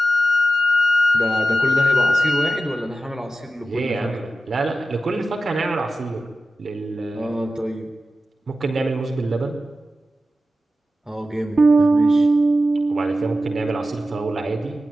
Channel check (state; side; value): normal; both; correlation 0.93